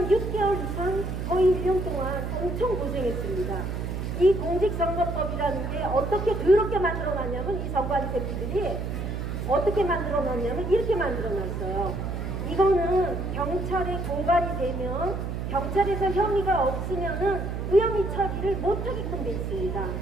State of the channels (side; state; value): right; noise; hum, 4 dB below the sound